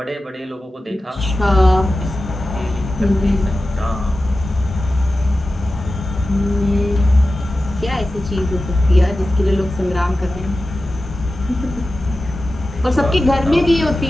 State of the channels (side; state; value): both; normal; correlation 0.94